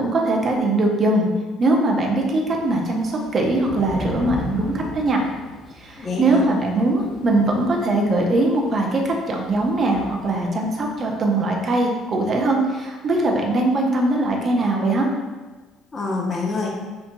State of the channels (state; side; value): normal; both; correlation 0.65